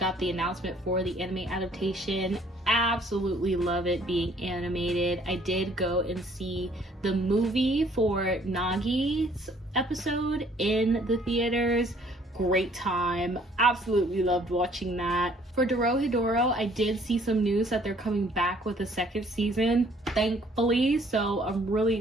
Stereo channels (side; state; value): both; normal; correlation 0.60